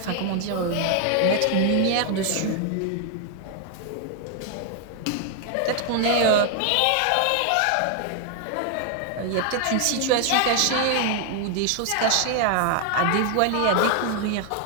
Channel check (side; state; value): both; different; correlation 0.00